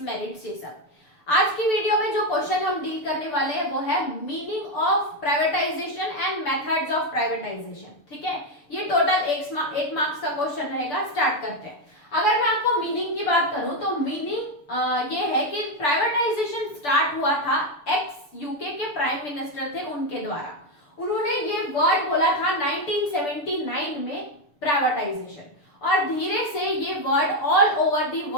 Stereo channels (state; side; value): late; right; 6.8 ms